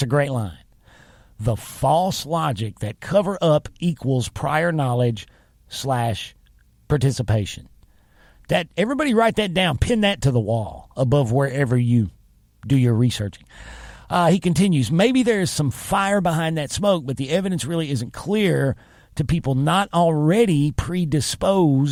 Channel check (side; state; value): both; identical; correlation 1.00